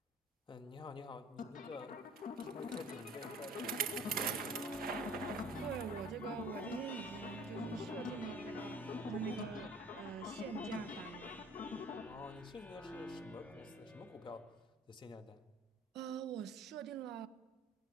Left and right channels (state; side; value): normal; both; correlation 0.49